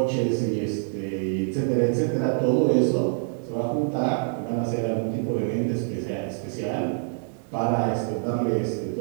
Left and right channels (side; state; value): left; silent; digital silence